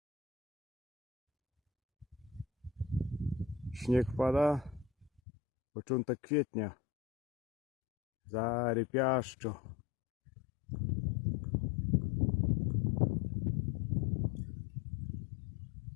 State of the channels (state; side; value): drops out; right; at 5.2 s